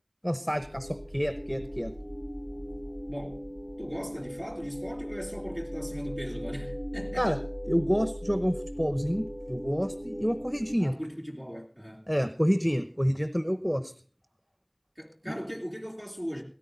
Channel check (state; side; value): identical; both; correlation 1.00